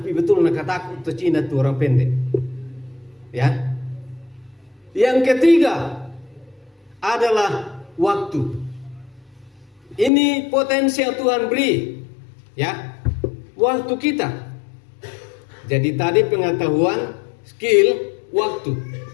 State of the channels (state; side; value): drops out; right; at 10.1 s